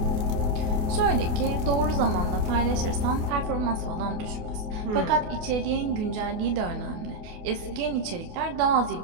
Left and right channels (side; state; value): left; late; 28 ms